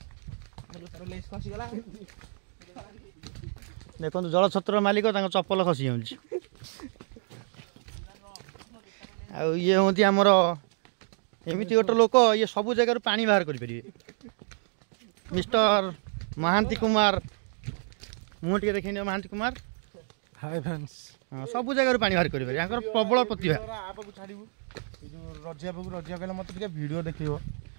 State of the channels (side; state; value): left; silent; 59 dB below the other